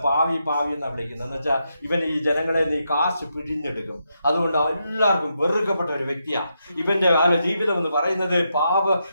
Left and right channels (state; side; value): inverted; both; correlation -0.83